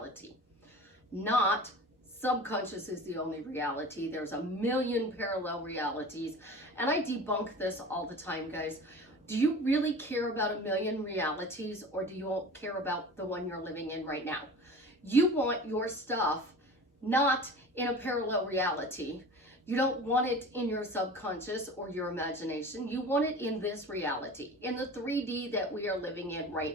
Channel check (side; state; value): both; normal; correlation 0.38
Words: Not subconscious is the only reality. There's a million parallel realities. And I debunk this all the time, guys. Do you really care about a million realities, or do you care about the one you're living in right now? You want your stuff not in a parallel reality. You don't want it in your subconscious or your imagination. You want it in this reality, in the 3D that we are living in